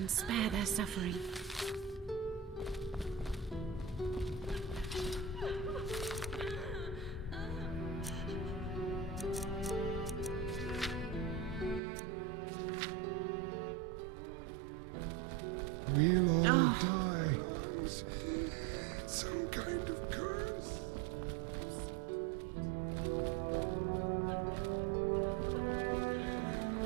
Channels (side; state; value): left; drops out; at 11.8 s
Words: spare their suffering. We'll all die. Some kind of curse.